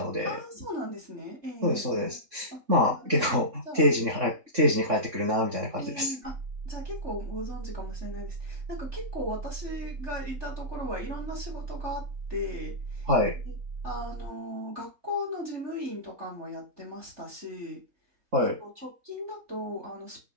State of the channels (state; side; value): late; left; 3.6 ms